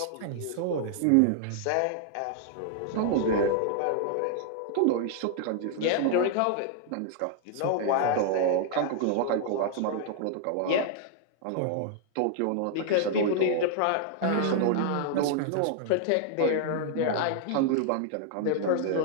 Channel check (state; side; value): different; both; correlation 0.00